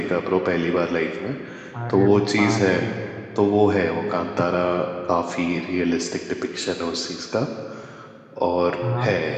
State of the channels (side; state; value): both; identical; correlation 1.00